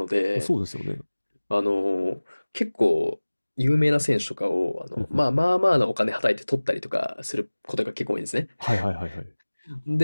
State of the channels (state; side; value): inverted; both; correlation -1.00